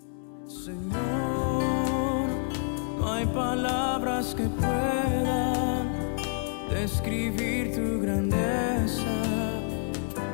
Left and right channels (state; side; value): silent; right; 59 dB below the other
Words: Señor, no hay palabras que puedan describir tu grandeza